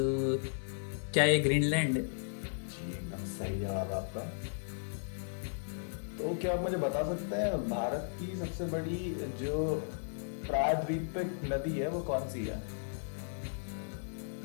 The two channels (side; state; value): right; silent; 54 dB below the other